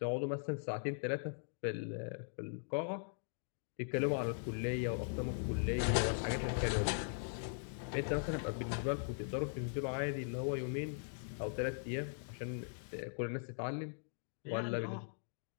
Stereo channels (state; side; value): silent; right; digital silence